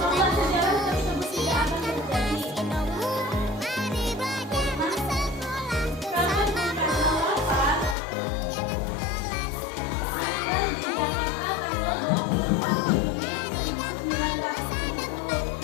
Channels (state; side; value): drops out; right; at 8.0 s